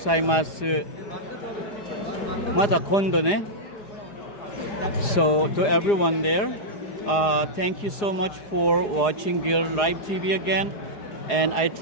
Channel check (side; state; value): right; late; 4.8 ms